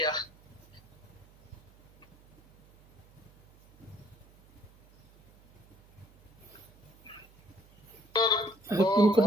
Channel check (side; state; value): right; noise; hum, 27 dB below the sound